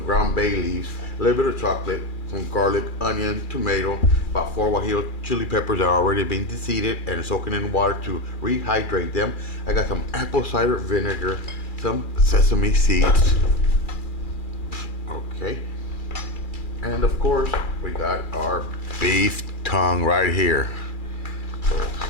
ground bay leaves, a little bit of chocolate, some garlic, onion, tomato, about 4 guajillo chili peppers that are already being deseeded and soaking in water to rehydrate them. I got some apple cider vinegar, some sesame seeds. Okay. And of course, we got our beef tongue right here. So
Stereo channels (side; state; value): right; late; 2.4 ms